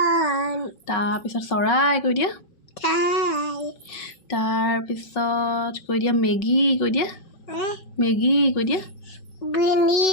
তাৰপিছত চৰাই কৈ দিয়া তাৰপিছত কৈ দিয়া মেগী কৈ দিয়া মেগী কৈ দিয়া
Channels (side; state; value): right; late; 5.4 ms